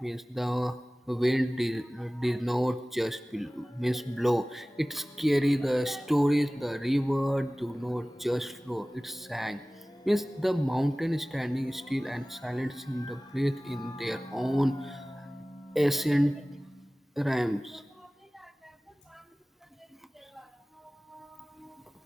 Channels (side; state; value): both; normal; correlation 0.98